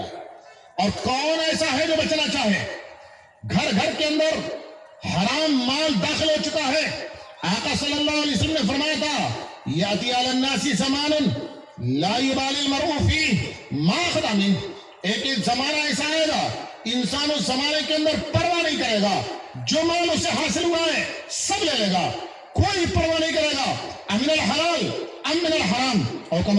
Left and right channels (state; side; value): identical; both; correlation 1.00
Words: ہے. اور کون ایسا ہے جو بچنا چاہے؟ گھر گھر کے اندر حرام مال داخل ہو چکا ہے. آقا صلی اللہ علیہ وسلم نے فرمایا تھا یاتی علی الناس زمان لا یبالی المرء فیہ ما اخذ منہ. ایک زمانہ ایسا آئے گا انسان اس زمانے کے اندر پرواہ نہیں کرے گا، جو مال اسے حاصل ہوا ہے سب لے لے گا، کوئی پرواہ نہیں کرے گا امن الحلال ام من الحرام. اور